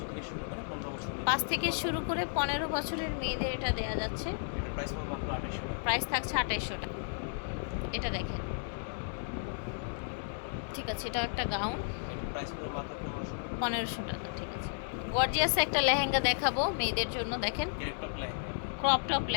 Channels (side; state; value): right; silent; digital silence